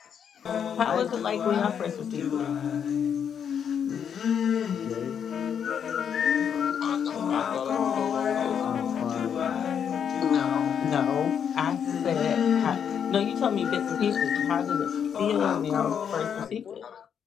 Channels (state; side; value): quieter; right; 7.9 dB